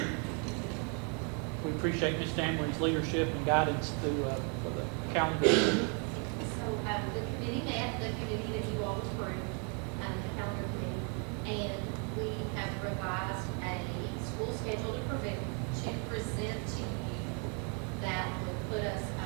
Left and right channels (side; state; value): left; quieter; 37.5 dB